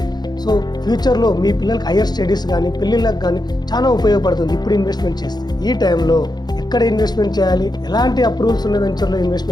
సో ఫ్యూచర్లో మీ పిల్లలకి హైయర్ స్టడీస్ కానీ పెళ్ళిళ్ళకి కానీ చాలా ఉపయోగపడుతుంది ఇప్పుడు ఇన్వెస్ట్మెంట్ చేస్తే. ఈ టైంలో ఎక్కడ ఇన్వెస్ట్మెంట్ చేయాలి, ఎలాంటి అప్రూవల్స్ ఉన్న వెంచర్లో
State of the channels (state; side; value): late; right; 0.20 ms